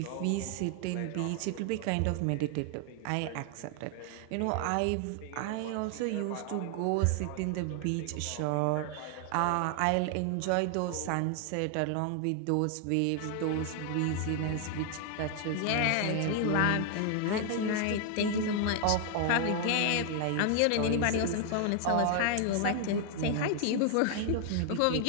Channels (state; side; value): different; both; correlation 0.00